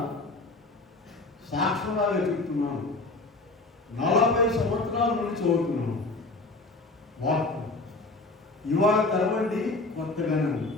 సాక్ష్యంలాగా చెప్తున్నాను. 40 సంవత్సరాల నుండి చదువుతున్నాను వాక్యం. ఇవాళ తెరవండి కొత్తగానే ఉంది.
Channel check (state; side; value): quieter; right; 3.3 dB